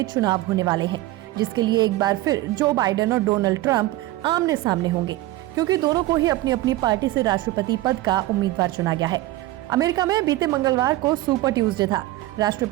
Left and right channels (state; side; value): quieter; left; 16.9 dB